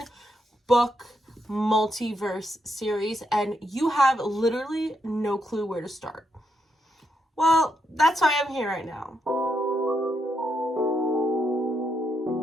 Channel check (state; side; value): normal; both; correlation 0.81